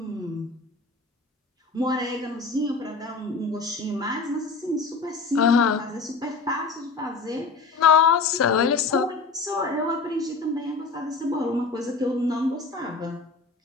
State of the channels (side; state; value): right; quieter; 4.1 dB